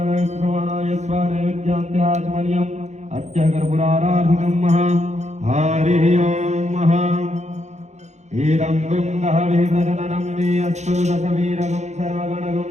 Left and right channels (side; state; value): left; late; 0.33 ms